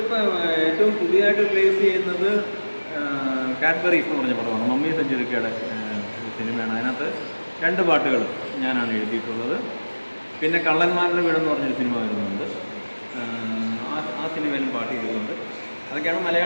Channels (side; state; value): both; inverted; correlation -1.00